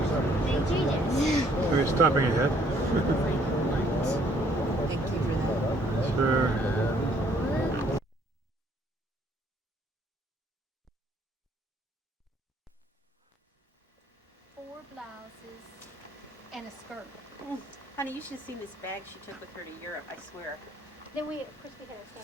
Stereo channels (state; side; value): normal; both; correlation 0.64